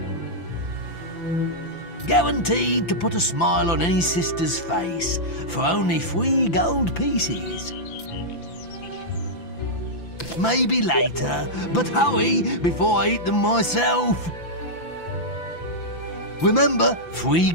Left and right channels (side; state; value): right; late; 5.9 ms